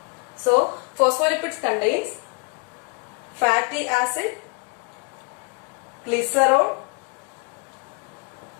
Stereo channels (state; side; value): quieter; right; 35.4 dB